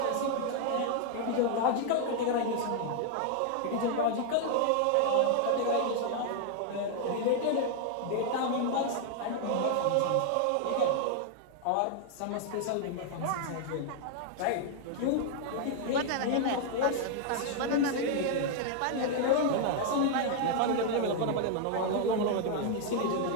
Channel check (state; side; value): different; both; correlation -0.01